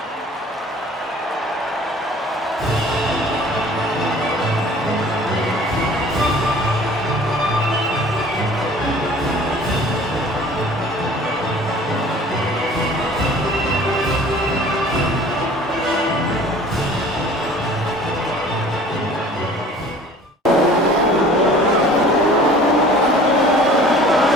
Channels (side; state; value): both; normal; correlation 0.48